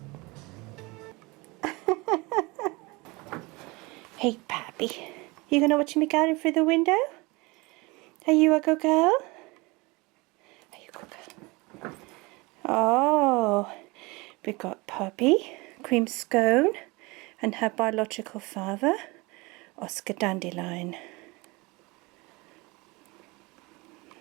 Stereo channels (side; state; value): left; quieter; 24.9 dB